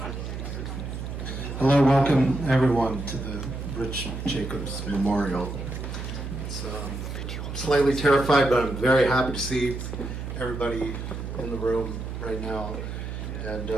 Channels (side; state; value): right; noise; hum, 6 dB below the sound